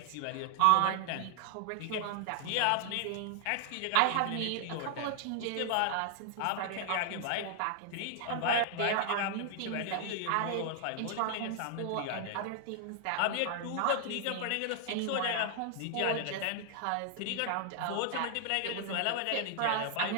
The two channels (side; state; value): both; different; correlation 0.00